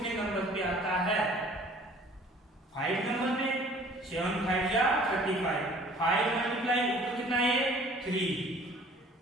नंबर पे आता है, 5 नंबर पे, 7 5 या 35, 5 मल्टीप्लाई ऊपर कितना है 3,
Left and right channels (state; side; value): normal; both; correlation 0.52